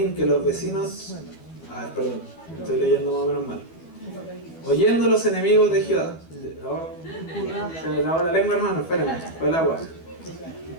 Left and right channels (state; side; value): late; right; 12 ms